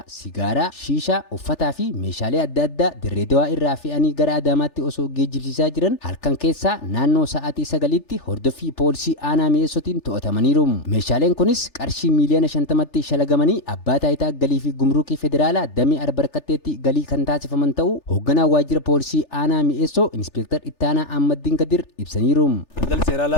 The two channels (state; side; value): late; right; 3.4 ms